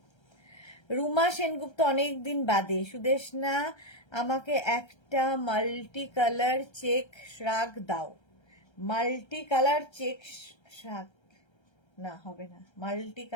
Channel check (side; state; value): right; late; 1.3 ms